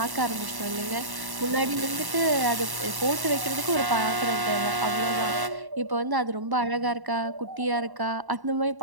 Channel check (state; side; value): late; left; 1.1 ms